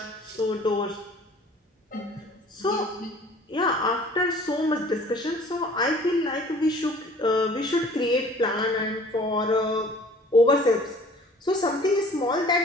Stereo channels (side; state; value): both; normal; correlation 0.50